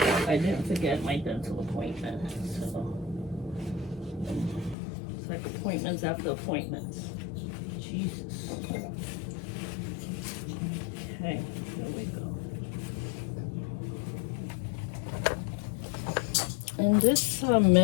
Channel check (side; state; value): right; drops out; at 4.8 s